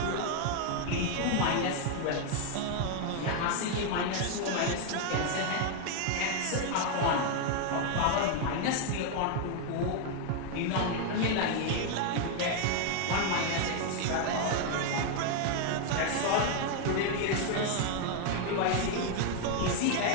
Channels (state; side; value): different; both; correlation 0.01